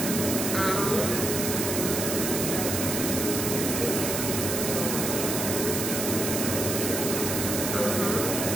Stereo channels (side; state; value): right; noise; hiss, 2 dB below the sound